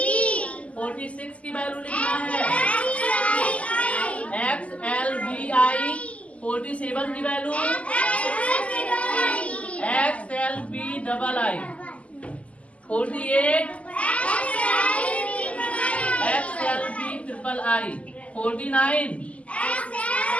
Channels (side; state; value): right; late; 0.066 ms